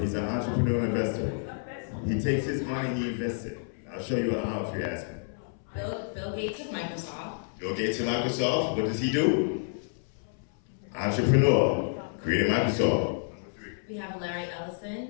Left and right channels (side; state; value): right; silent; 58 dB below the other